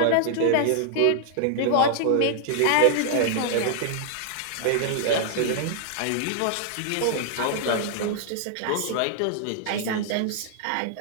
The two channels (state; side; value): different; both; correlation -0.01